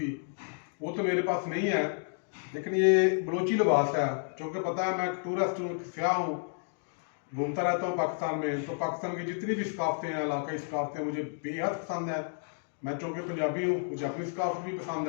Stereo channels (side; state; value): right; silent; digital silence